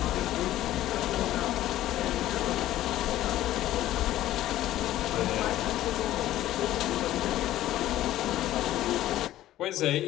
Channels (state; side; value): quieter; right; 14.1 dB